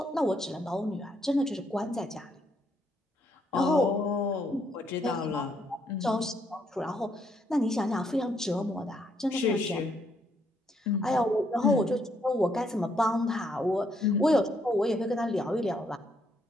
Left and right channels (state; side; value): normal; both; correlation 0.73